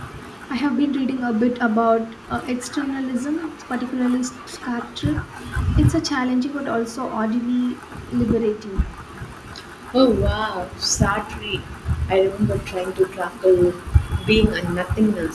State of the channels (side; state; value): both; identical; correlation 1.00